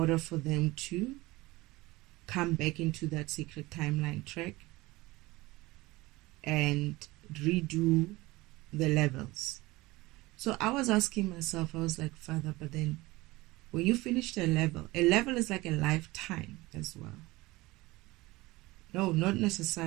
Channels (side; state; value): left; quieter; 20.6 dB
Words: for them to come back into that sacred timeline track and redo the levels. So I was asking myself, I was like, Father, but then when you finish a level is like a lifetime as well. No, not